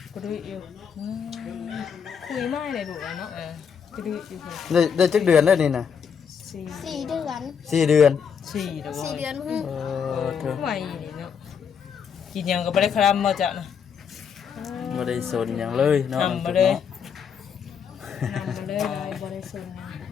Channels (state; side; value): quieter; right; 7.0 dB